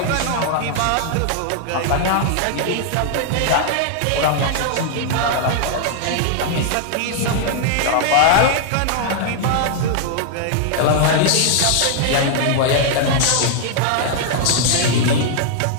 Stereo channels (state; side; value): different; both; correlation -0.01